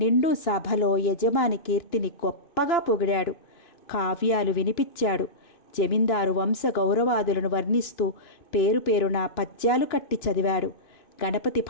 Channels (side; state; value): right; late; 2.9 ms